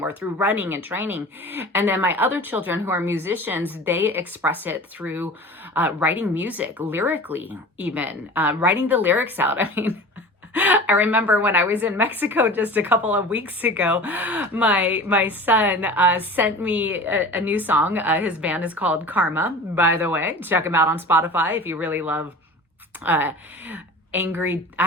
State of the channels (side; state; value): both; normal; correlation 0.37